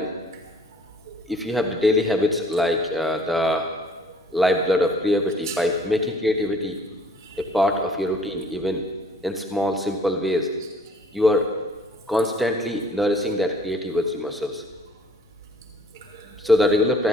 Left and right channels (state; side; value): normal; both; correlation 0.56